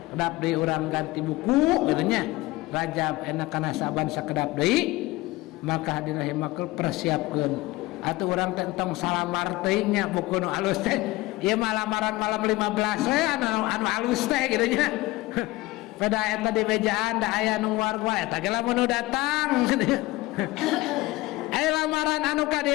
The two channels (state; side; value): quieter; right; 19.6 dB